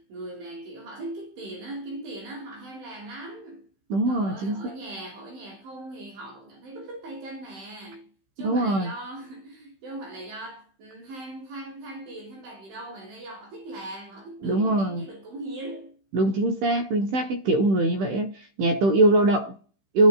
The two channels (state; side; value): late; left; 15 ms